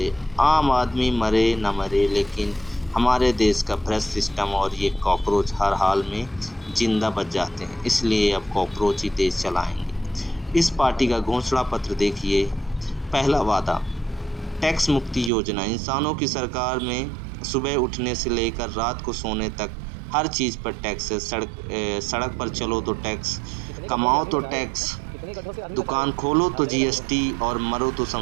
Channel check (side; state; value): left; drops out; at 15.3 s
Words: आम आदमी मरे न मरे, लेकिन हमारे देश का भ्रष्ट सिस्टम और ये कॉकरोच हर हाल में जिंदा बच जाते हैं। इसलिए अब कॉकरोच ही देश चलाएंगे। इस पार्टी का घोषणा पत्र देखिए। पहला वादा, टैक्स मुक्ति योजना। इंसानों की सरकार में सुबह उठने से लेकर रात को सोने तक हर चीज़ पर टैक्स है। सड़क पर चलो तो टैक्स, कमाओ तो टैक्स, दुकान खोलो तो जीएसटी और मरो तो